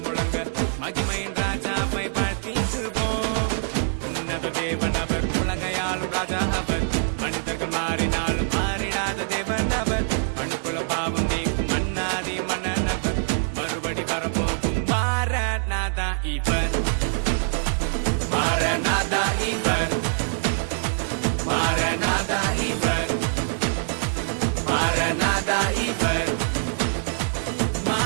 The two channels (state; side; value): silent; left; digital silence